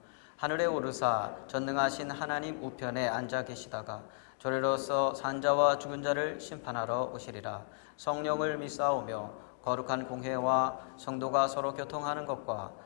하늘에 오르사 전능하신 하나님 우편에 앉아 계시다가 저리로서 산자와 죽은 자를 심판하러 오시리라. 성령을 믿사오며 거룩한 공회와 성도가 서로 교통하는 것과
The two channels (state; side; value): silent; right; digital silence